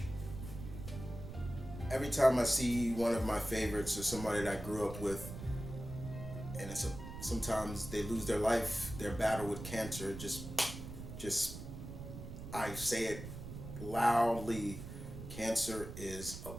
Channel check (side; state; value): right; noise; rumble, 10 dB below the sound